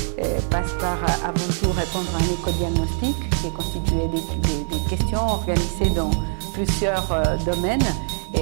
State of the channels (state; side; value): silent; left; 64 dB below the other